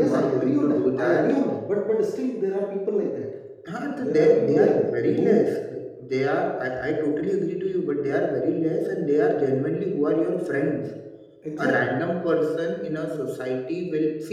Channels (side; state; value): both; identical; correlation 1.00